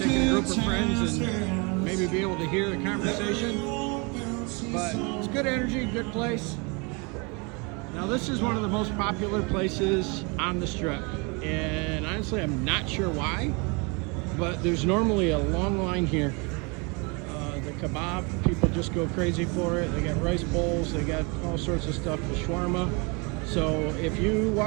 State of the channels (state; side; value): quieter; left; 30.7 dB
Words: a group of friends and maybe be able to hear the conversation. But it's good energy, good place. Now this is one of the most popular places on the Strip. And honestly, I'm not sure why, but there's normally a long line here. The kebab, people just go crazy for it. They got rice bowls, they got all sorts of stuff, the shawarma. So if you